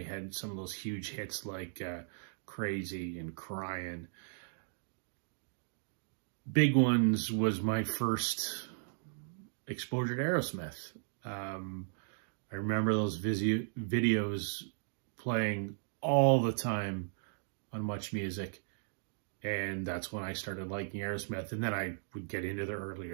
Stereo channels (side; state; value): left; silent; digital silence